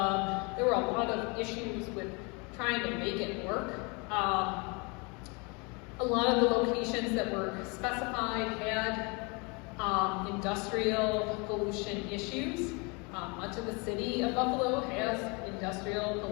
there were a lot of issues with trying to make it work. A lot of the locations that were specified had industrial pollution issues. Much of the city of Buffalo has industrial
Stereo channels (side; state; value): right; quieter; 30.4 dB